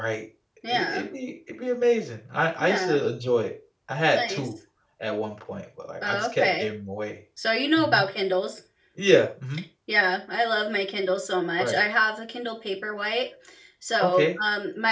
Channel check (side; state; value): both; identical; correlation 1.00